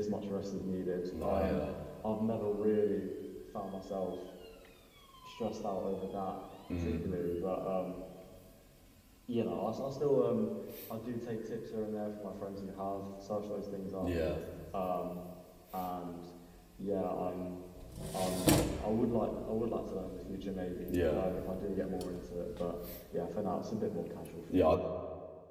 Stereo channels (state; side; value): identical; both; correlation 1.00